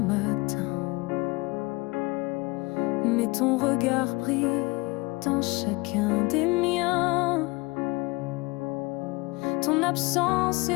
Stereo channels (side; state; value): right; quieter; 24.5 dB